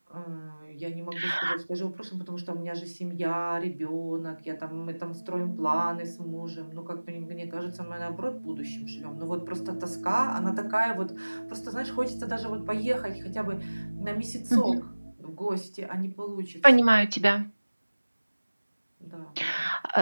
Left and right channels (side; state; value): both; inverted; correlation -1.00